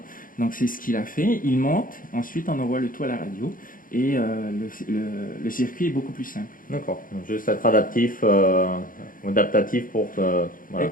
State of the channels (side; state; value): right; late; 0.40 ms